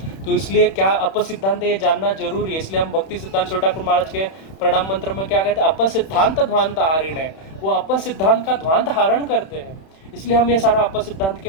तो इसलिए क्या अपसिद्धांत ये जानना जरूरी है। इसलिए हम भक्ति सिद्धांत छोटा ठाकुर महाराज के प्रणाम मंत्र में क्या कहते हैं, अपसिद्धांत ध्वांत हारिण है। वो अपसिद्धांत का ध्वांत हारण करते हैं। इसलिए हम ये सारा अपसिद्धांत के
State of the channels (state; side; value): late; right; 31 ms